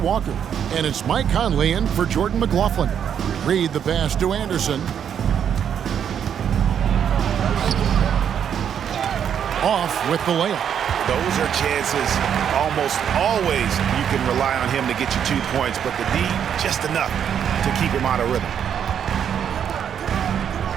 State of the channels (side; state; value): left; quieter; 8.5 dB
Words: And it's Mike Conley in for Jordan McLaughlin. Reed the pass to Anderson. Off with the layup. Those are chances almost always you can rely on him to get you 2 points, but the D just enough to keep him out of rhythm.